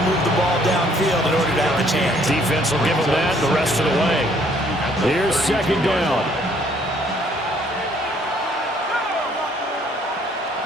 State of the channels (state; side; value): normal; both; correlation 0.63